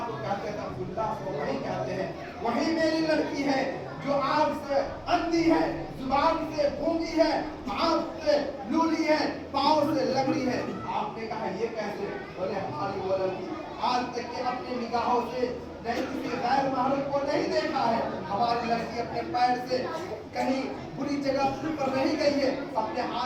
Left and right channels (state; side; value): identical; both; correlation 1.00